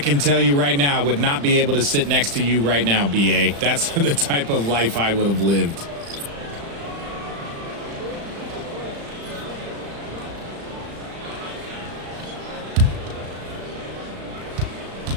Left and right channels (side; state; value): left; late; 35 ms